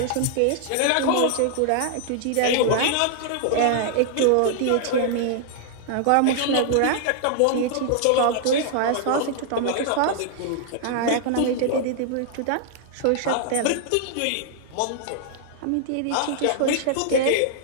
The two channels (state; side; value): different; both; correlation -0.01